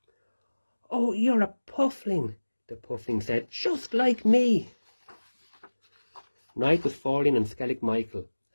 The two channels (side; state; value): both; inverted; correlation -1.00